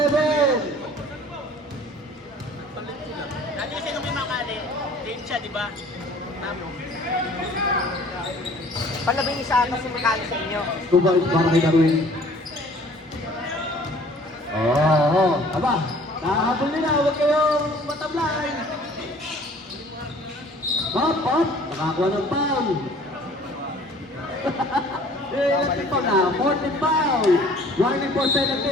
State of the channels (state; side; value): normal; both; correlation 0.52